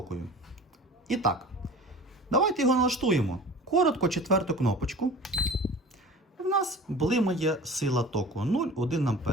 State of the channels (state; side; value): normal; both; correlation 0.40